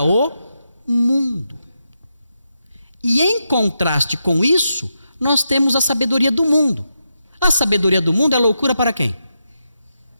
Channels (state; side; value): inverted; both; correlation -0.85